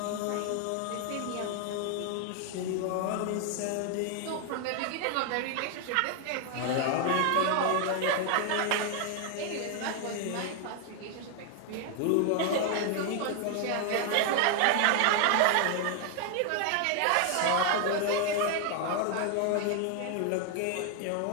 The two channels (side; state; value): both; different; correlation 0.00